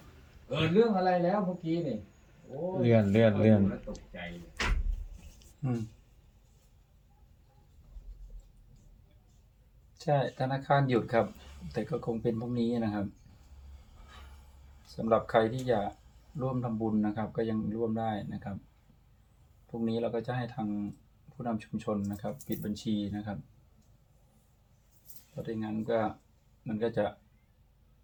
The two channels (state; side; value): identical; both; correlation 1.00